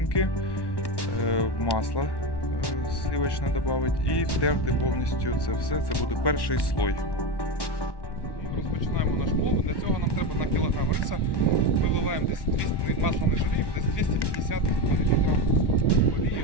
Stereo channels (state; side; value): late; right; 1.1 ms